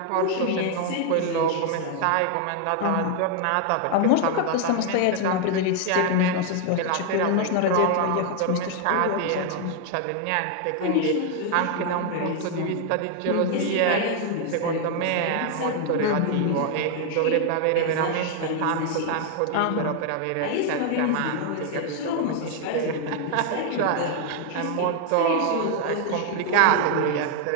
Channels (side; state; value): both; different; correlation 0.00